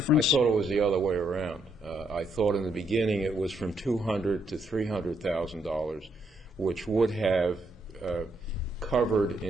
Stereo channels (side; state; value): both; normal; correlation 0.75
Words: thought it was the other way around. I thought in the beginning it was from $200,000 to $300,000, which would have covered